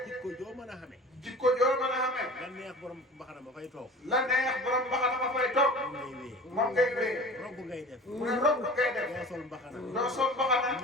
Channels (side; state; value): both; normal; correlation 0.39